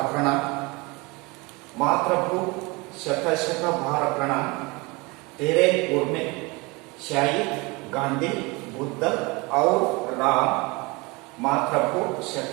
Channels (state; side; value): quieter; left; 25.8 dB